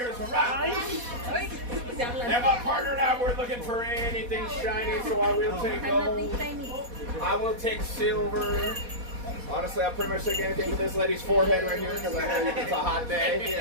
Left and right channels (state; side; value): late; left; 4.2 ms